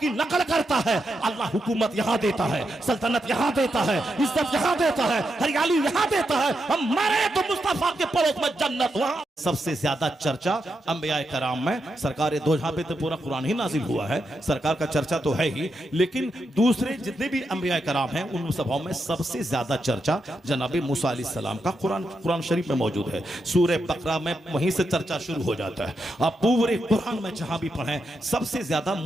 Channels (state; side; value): normal; both; correlation 0.85